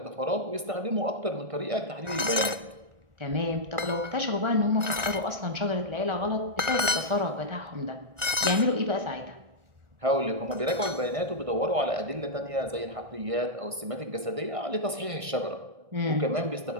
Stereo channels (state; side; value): late; left; 1.6 ms